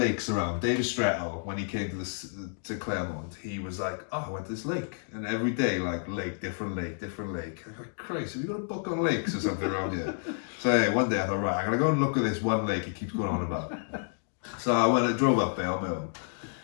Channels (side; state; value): right; silent; digital silence